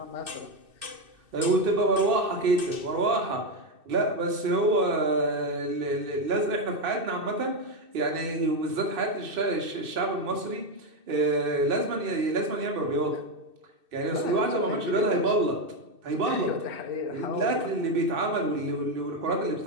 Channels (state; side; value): late; left; 2.6 ms